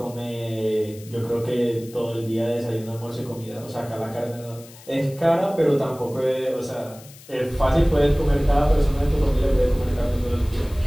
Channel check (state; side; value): noise; left; hiss, 21 dB below the sound